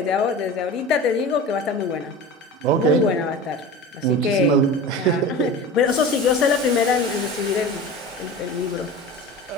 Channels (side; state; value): both; normal; correlation 0.33